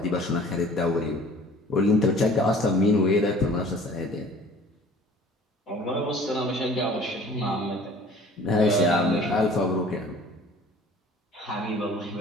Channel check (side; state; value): both; normal; correlation 0.50